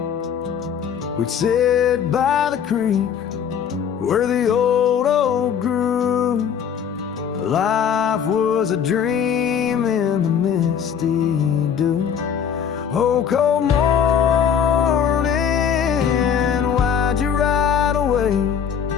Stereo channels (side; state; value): right; quieter; 7.9 dB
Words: We'd sit by the creek where the old oak grew. Life was a dream in the misty dew. Oh, cold morning, why'd you ride away?